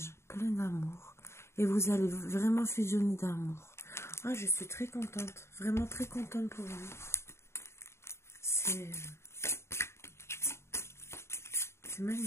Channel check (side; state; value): right; late; 0.13 ms